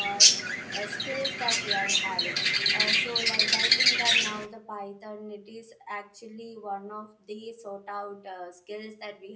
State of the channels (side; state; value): both; identical; correlation 1.00